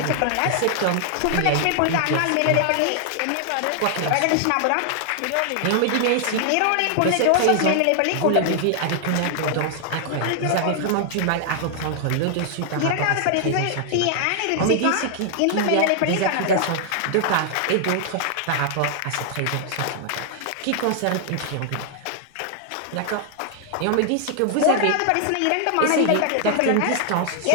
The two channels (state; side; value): different; both; correlation 0.00